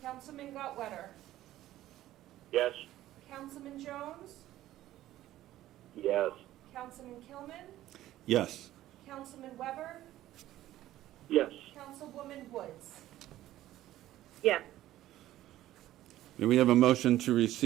Councilman Gottwetter? Yes. Councilman Jones? Yes. Councilman Kilman? Yes. Councilman Weber? Yes. Councilwoman Woods? Yes. May we have a motion to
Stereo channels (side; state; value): left; quieter; 14.3 dB